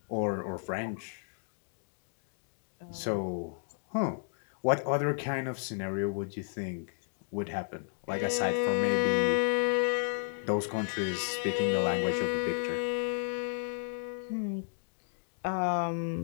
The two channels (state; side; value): silent; right; digital silence